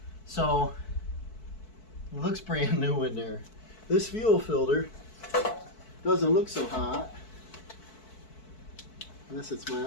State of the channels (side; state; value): right; late; 4.6 ms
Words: So, it looks brand new in there. This fuel filter doesn't look so hot, unless it's